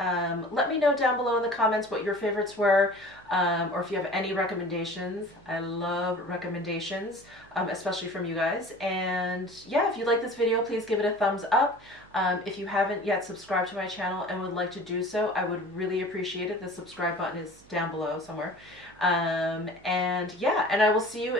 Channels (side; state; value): right; noise; hum, 26 dB below the sound